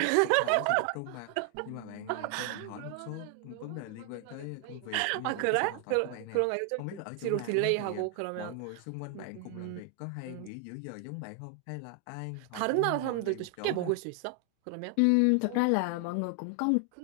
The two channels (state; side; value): different; both; correlation 0.00